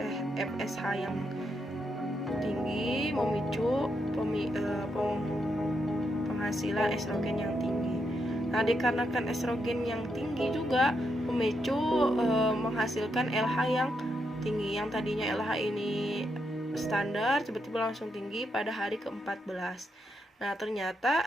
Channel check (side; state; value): both; normal; correlation 0.81